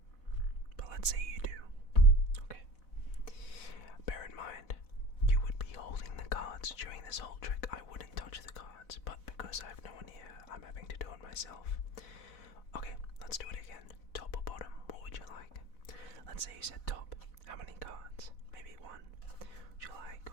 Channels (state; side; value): late; right; 4.0 ms